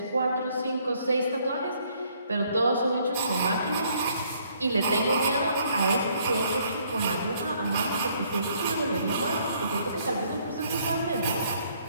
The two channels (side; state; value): both; inverted; correlation -0.66